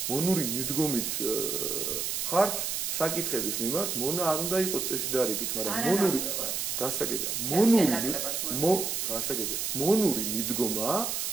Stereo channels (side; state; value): right; noise; hiss, 1 dB below the sound